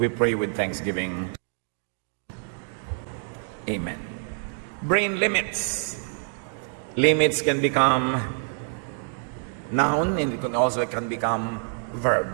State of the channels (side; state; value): left; silent; 58 dB below the other